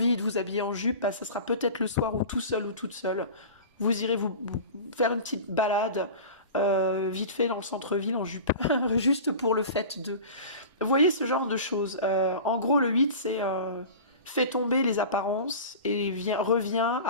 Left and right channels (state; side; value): inverted; both; correlation -0.35